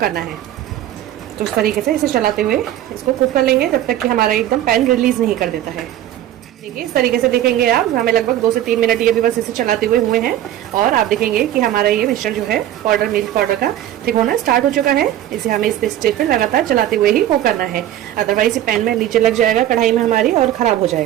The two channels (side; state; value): left; quieter; 12.5 dB